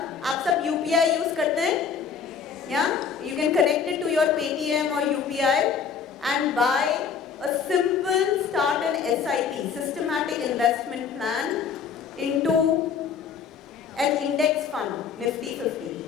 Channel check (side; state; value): right; quieter; 6.5 dB